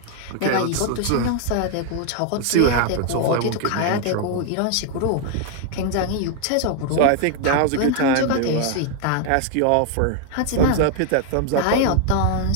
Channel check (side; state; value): both; different; correlation 0.00